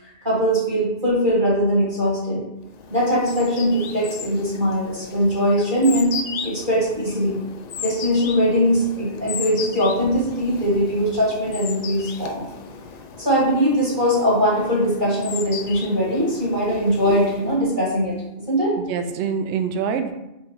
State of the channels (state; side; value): late; left; 1.9 ms